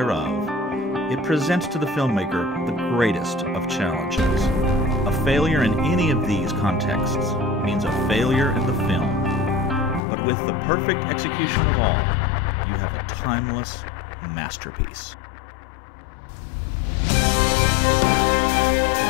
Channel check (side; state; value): right; drops out; at 10.0 s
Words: It presents to the filmmaker the greatest of challenges. A failure in any of these contexts means a failure in the film. But with the perfect execution of all, you have a timeless masterpiece.